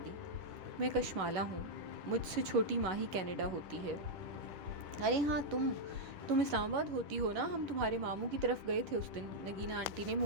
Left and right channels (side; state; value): left; late; 11 ms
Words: دی۔ میں کشمالا ہوں، مجھ سے چھوٹی ماہی کینیڈا ہوتی ہے۔ ارے ہاں، تم اسلام آباد ہوتی ہو نا، ہم تمہارے ماموں کی طرف گئے تھے اس دن۔ نگینہ آنٹی نے